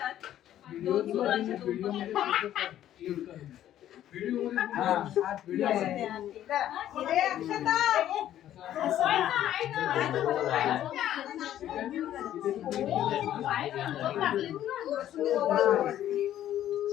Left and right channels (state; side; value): quieter; right; 11.9 dB